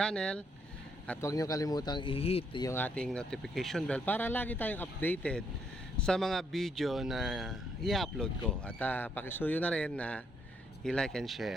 at huwag nyo kalimutang i-hit yung ating notification bell para lagi tayong updated sa mga video na i-upload ko at pakisuyo na rin na i-like and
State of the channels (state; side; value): normal; both; correlation 0.73